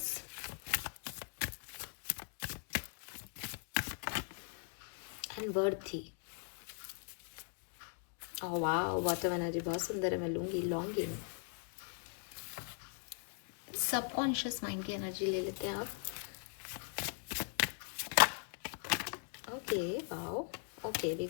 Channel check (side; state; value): right; silent; 51 dB below the other